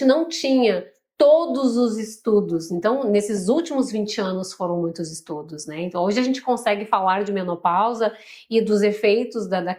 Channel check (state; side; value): identical; both; correlation 1.00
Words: não tinha todos os estudos. Então, nesses últimos 20 anos foram muitos estudos, né? Então, hoje a gente consegue falar de menopausa e dos efeitos da